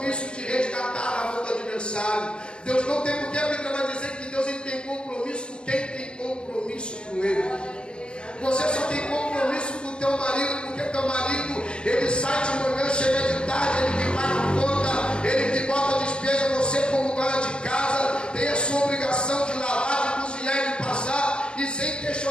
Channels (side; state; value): right; late; 0.055 ms